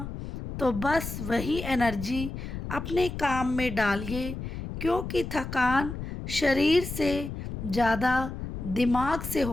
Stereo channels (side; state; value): left; noise; rumble, 7 dB below the sound